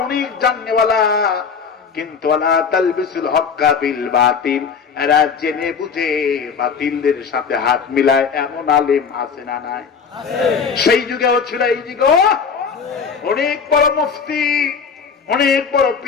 অনেক জাননেওয়ালা, কিন্তু ওয়ালা তালবিসুল হক্কা বিল বাতিল, এরা জেনে বুঝে বাতিলদের সাথে হাত মিলায় এমন আলেম আছে না নাই? সেই যুগেও ছিল, এই যুগেও অনেক বড় মুফতি, অনেক বড়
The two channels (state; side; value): quieter; right; 6.1 dB